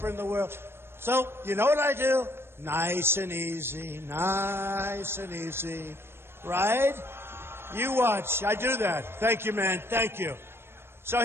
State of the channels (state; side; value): late; left; 0.12 ms